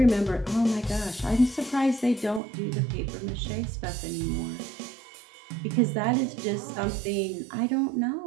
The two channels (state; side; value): drops out; left; at 2.4 s